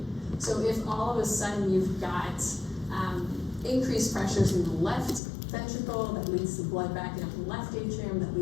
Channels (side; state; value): right; drops out; at 5.2 s